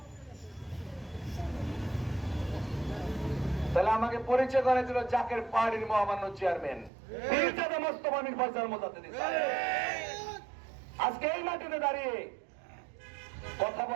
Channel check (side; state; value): left; drops out; at 6.9 s